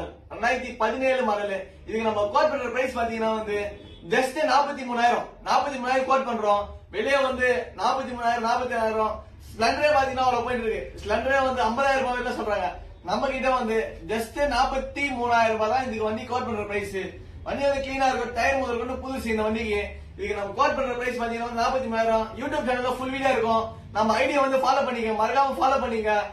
2017 மாடல். இதுக்கு நம்ம கோட் பண்ற பிரைஸ் பாத்தீங்கன்னா ஜஸ்ட் 43,000 கோட் பண்றோம். வெளியே 43,000 47,000. ஸ்பிளண்டரே பாத்தீங்கன்னா அவ்வளவு போயிட்டு இருக்கு. ஸ்பிளண்டரே 50,000 ரூபாய் சொல்றாங்க. நம்ம கிட்ட ஜஸ்ட் 43,000 ரூபாய் தான் இதுக்கு வண்டி கோட் பண்ற பிரைஸ். வண்டி கிளீனா இருக்கும், டயர் முதல் கொண்டு புதுசு இந்த வண்டிக்கு. இதுக்கு நம்ம கோட் பண்ற பிரைஸ் பாத்தீங்கன்னா 43,000. யூடியூப் சேனல்ல ஃபுல் வீடியோ இருக்கும். நம்ம ஐடியா ஃபாலோ பண்ணிக்க, மறக்காம ஃபாலோ பண்ணிக்க.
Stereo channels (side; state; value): both; identical; correlation 1.00